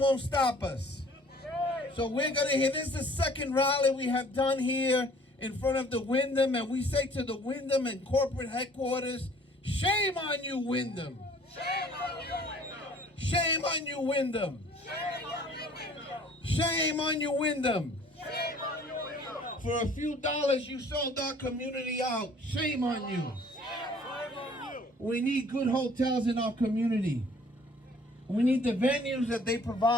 won't stop us. So we're going to hear, this is the second rally we have done here in front of the Wyndham, and we say to the Wyndham and corporate headquarters, shame on you, Wyndham. Shame on you, Wyndham. Shame on you, Wyndham. Shame on you, Wyndham. Shame on you, Wyndham. For a few dollars, you sold our community out. Shame on you. We need good hotels in our community. We need the venues that they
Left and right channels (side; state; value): both; normal; correlation 0.54